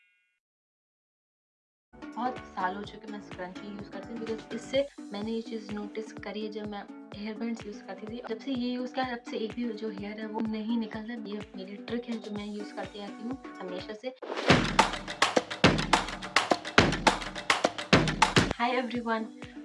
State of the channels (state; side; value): identical; both; correlation 1.00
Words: बहुत साल हो चुके मैं स्क्रंची यूज़ करती हूँ, बिकॉज इससे मैंने ये चीज़ नोटिस करी है जब मैं हेयर बैंड्स यूज़ करती थी। जब से ये यूज़ किया तब से एक भी जो हेयर है वो नहीं निकलता। ये मेरी ट्रिक है जो मैं यूज़ करती आती हूँ हमेशा से। Hi everyone,